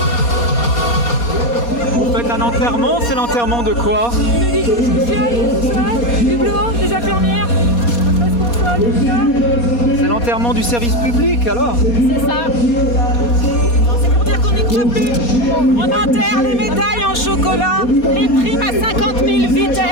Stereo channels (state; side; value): late; right; 4.2 ms